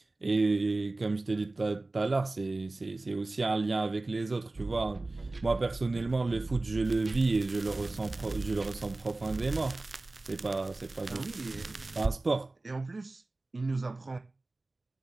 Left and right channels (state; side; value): quieter; left; 3.1 dB